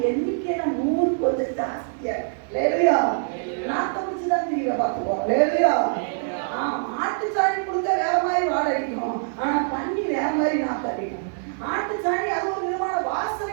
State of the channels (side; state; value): left; silent; 62 dB below the other